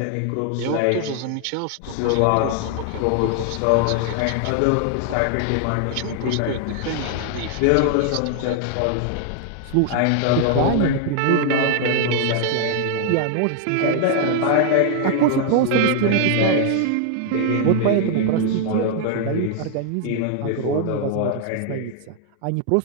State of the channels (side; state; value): both; different; correlation 0.00